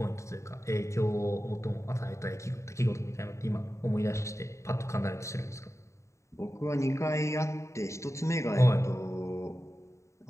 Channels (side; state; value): right; late; 0.14 ms